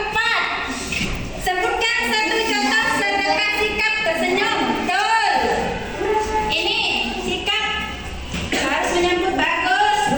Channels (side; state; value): both; identical; correlation 1.00